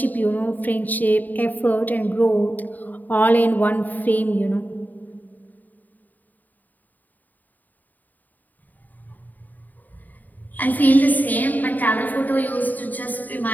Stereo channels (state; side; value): late; right; 0.084 ms